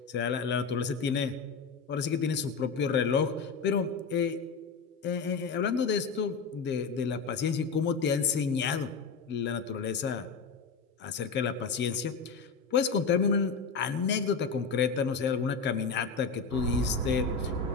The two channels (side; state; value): right; quieter; 5.1 dB